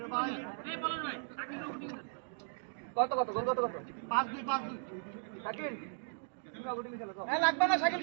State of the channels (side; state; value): left; silent; digital silence